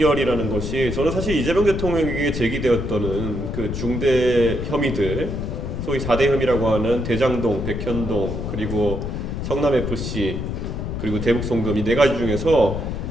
것이 저는 사실 이재명 대통령에게 제기되었던 그 중대 혐의들, 소위 4대 혐의라고 하는 대장동, 백현동, 그리고 성남FC, 그리고 대북송금 이 네 가지 중에서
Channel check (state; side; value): noise; left; rumble, 4 dB below the sound